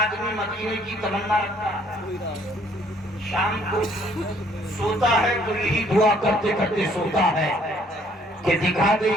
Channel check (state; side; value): normal; both; correlation 0.63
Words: مدینے کی تمنا رکھتا ہے. شام کو سوتا ہے تو یہی دعا کرتے کرتے سوتا ہے کہ دکھا دے